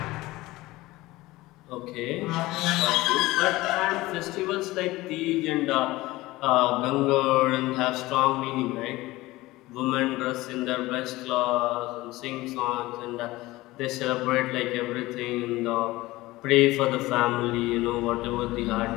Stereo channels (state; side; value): quieter; right; 19.0 dB